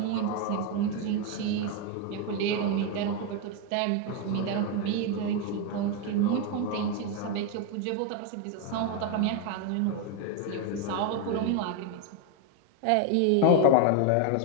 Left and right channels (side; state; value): both; different; correlation 0.01